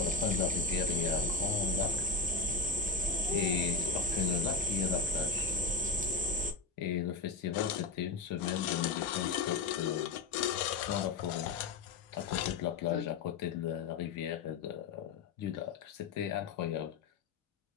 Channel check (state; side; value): quieter; right; 4.1 dB